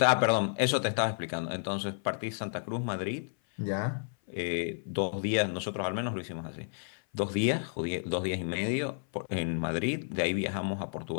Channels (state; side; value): silent; right; 57 dB below the other